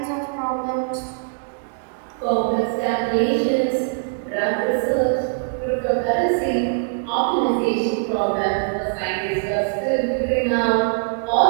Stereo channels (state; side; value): silent; left; 64 dB below the other